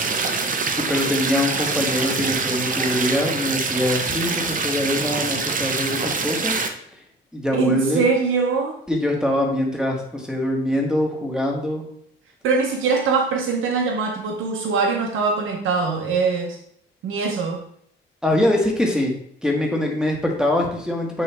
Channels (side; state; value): both; normal; correlation 0.44